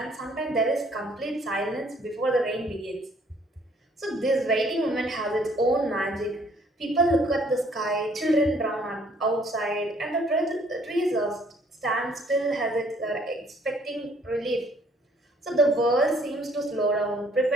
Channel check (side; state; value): both; normal; correlation 0.62